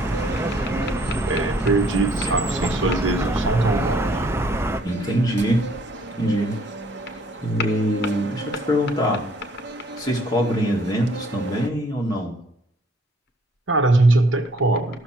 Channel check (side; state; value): both; normal; correlation 0.62